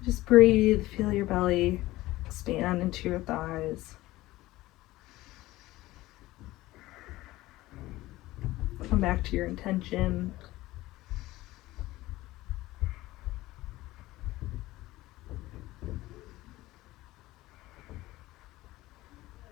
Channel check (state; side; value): quieter; right; 17.7 dB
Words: Just breathe, feel your belly expand into your thighs. Come back to your intention.